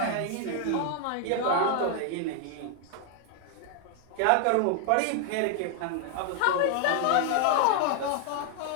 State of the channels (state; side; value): different; both; correlation 0.00